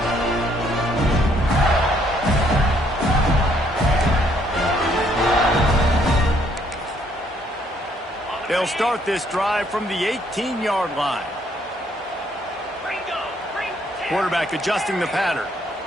18. They'll start this drive from the 18-yard line. Quarterback adjusting the pattern.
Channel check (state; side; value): normal; both; correlation 0.68